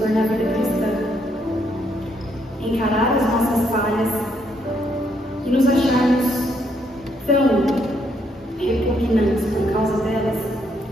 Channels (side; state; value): both; normal; correlation 0.73